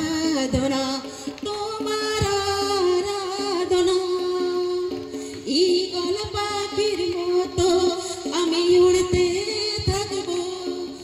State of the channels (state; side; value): identical; both; correlation 1.00